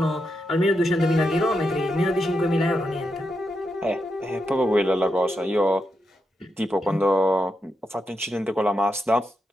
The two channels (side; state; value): both; normal; correlation 0.85